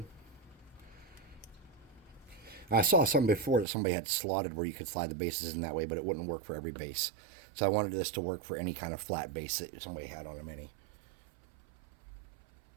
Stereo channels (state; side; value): drops out; left; at 3.7 s